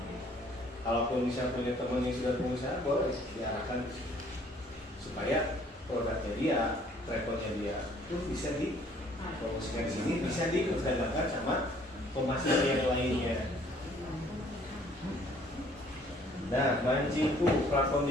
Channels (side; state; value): both; normal; correlation 0.59